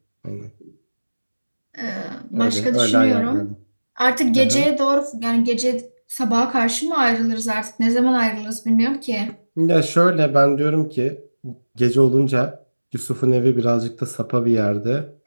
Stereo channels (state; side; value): inverted; both; correlation -1.00